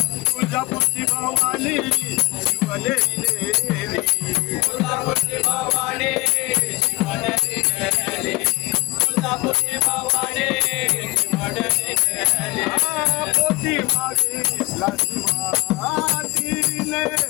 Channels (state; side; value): quieter; right; 21.6 dB